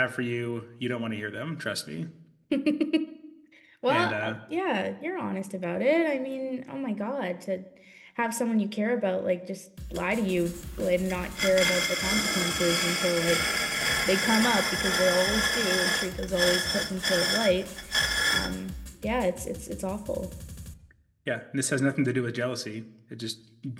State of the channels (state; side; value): identical; both; correlation 1.00